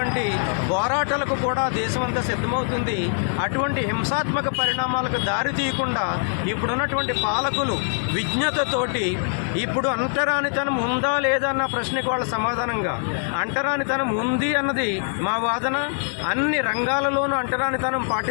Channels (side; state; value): right; silent; 63 dB below the other